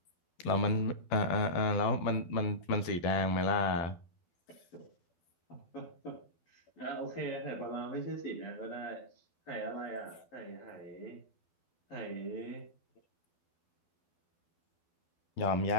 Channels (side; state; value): right; late; 12 ms